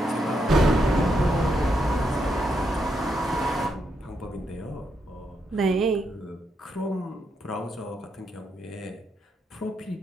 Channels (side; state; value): both; normal; correlation 0.80